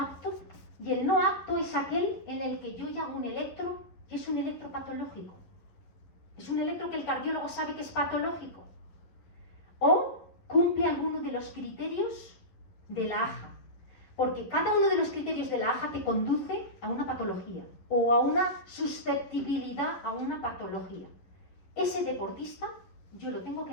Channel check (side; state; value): right; late; 11 ms